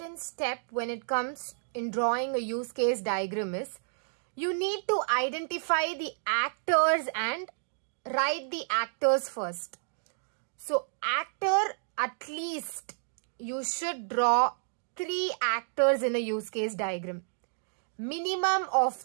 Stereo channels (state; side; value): silent; left; digital silence